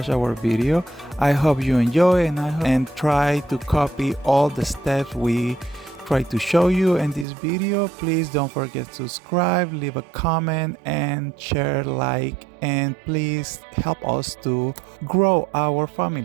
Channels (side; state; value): left; drops out; at 7.2 s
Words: our video. I hope you enjoy and try to copy all the steps we try to show you in this video. Please don't forget to subscribe, leave a comment and share, like, and please help us to grow our